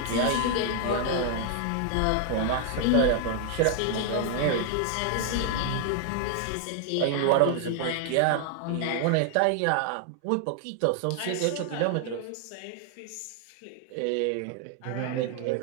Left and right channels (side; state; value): both; different; correlation 0.00